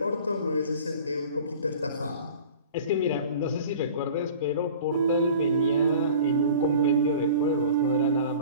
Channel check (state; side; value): inverted; both; correlation -0.42